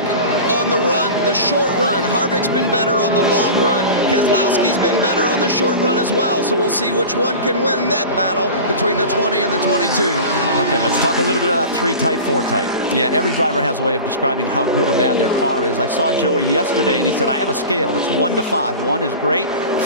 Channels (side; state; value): both; inverted; correlation -0.33